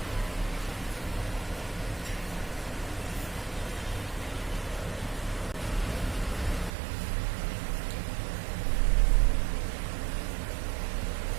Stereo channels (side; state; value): left; drops out; at 6.7 s